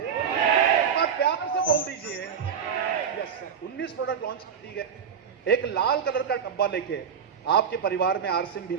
बार प्यार से बोल दीजिए। यस सर, 19 प्रोडक्ट लॉन्च कर दिए गए। एक लाल कलर का डब्बा लेके आपके परिवार में आरसीएम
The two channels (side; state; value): left; quieter; 7.4 dB